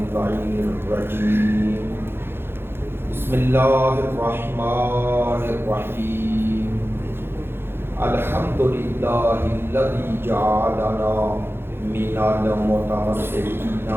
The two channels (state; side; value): late; left; 0.11 ms